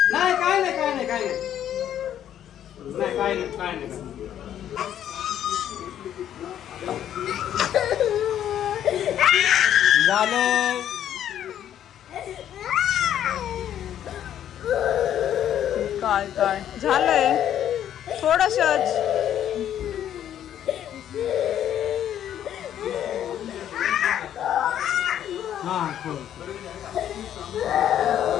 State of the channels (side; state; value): right; quieter; 10.6 dB